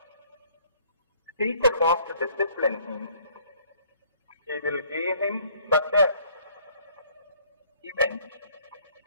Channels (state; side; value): inverted; both; correlation -0.60